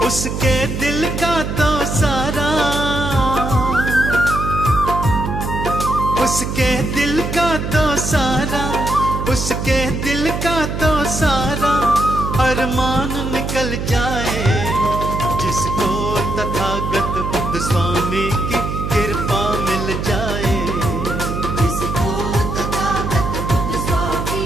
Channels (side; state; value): right; noise; hum, 3 dB below the sound